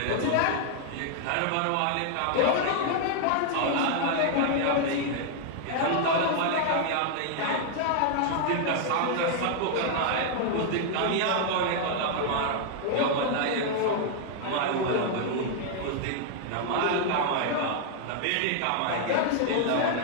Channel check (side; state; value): both; different; correlation 0.00